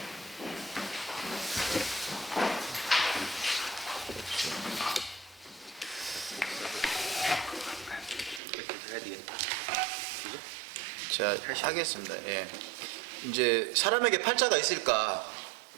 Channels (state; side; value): drops out; left; at 8.4 s